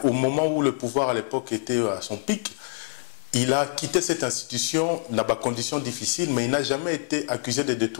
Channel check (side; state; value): right; silent; digital silence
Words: au moment où le pouvoir à l'époque était à son pic, il a quitté cette institution dans des conditions difficiles, mais il n'a jamais été accusé de